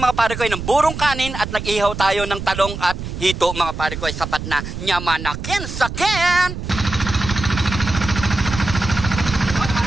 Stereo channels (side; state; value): right; noise; rumble, 7 dB below the sound